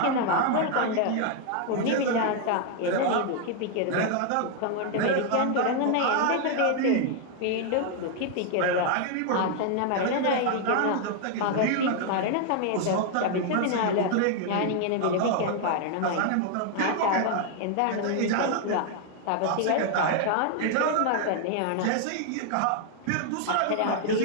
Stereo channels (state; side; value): different; both; correlation 0.00